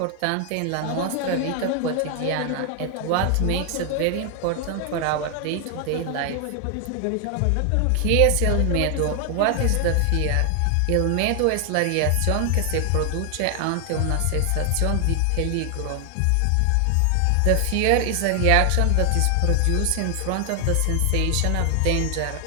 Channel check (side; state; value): both; different; correlation 0.00